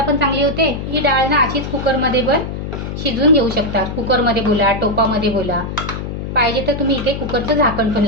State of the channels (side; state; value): left; noise; hum, 6 dB below the sound